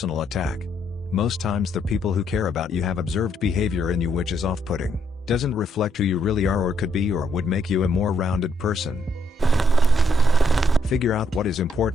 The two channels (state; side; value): normal; both; correlation 0.74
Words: attack. Most times the people who care about you have observed behavior in you which is off-putting, doesn't reflect who you really are or could be, or would make you a more rounded person. Figure out what is